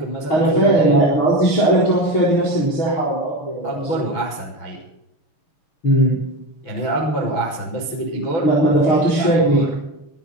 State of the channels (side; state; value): right; late; 6.0 ms